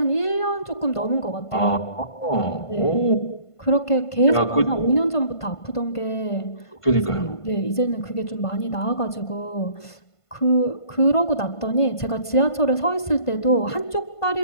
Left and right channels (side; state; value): right; late; 1.5 ms